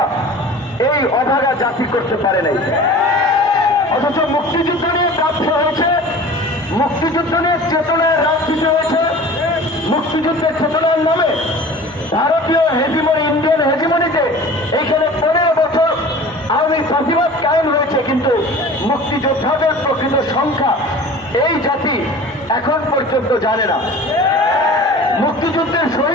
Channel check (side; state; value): both; normal; correlation 0.41